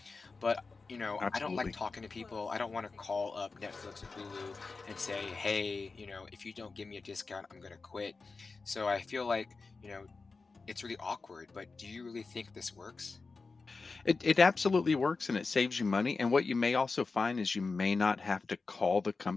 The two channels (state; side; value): quieter; right; 4.1 dB